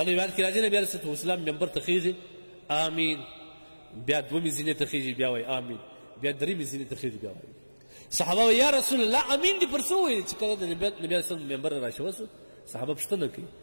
روایت کې راځي نبی علیه الصلاة والسلام منبر ته خیږي آمین بیا دومې زینې ته خیږي بیا وایي آمین بیا درېمې زینې ته خیږي بیا وایي صحابه یا رسول الله امین دې پر څه وویل چې کله د نبي علیه السلام منبر راشوه سو صحابه پوښتنه کوي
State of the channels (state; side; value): inverted; both; correlation -1.00